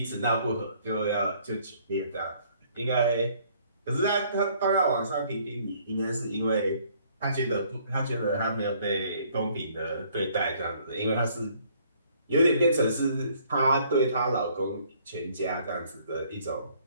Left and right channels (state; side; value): inverted; both; correlation -0.62